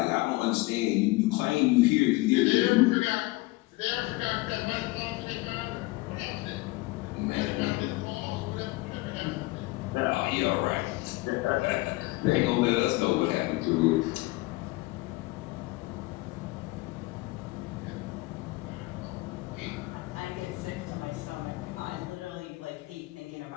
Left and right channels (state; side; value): quieter; right; 21.7 dB